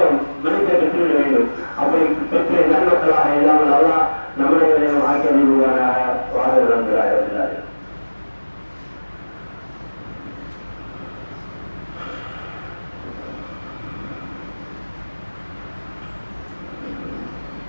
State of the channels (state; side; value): inverted; both; correlation -1.00